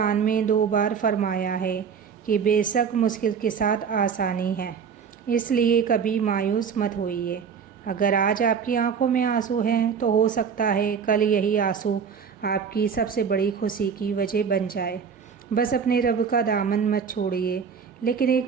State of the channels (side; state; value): left; quieter; 6.7 dB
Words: میں 2 بار فرمایا ہے کہ بے شک مشکل کے ساتھ آسانی ہے، اس لیے کبھی مایوس مت ہوئیے۔ اگر آج آپ کی آنکھوں میں آنسو ہیں تو ہو سکتا ہے کل یہی آنسو آپ کی سب سے بڑی خوشی کی وجہ بن جائے۔ بس اپنے رب کا دامن مت چھوڑیے۔ لیکن ایک